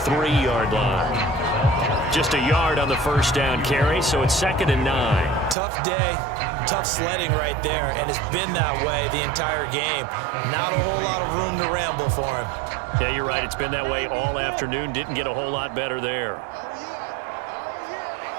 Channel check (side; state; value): left; drops out; at 5.6 s